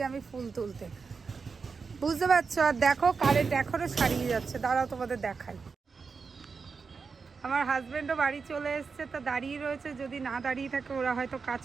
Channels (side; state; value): left; quieter; 5.1 dB